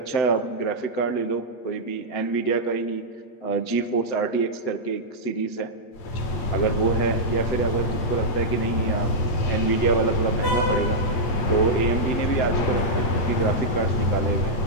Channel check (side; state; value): right; late; 7.9 ms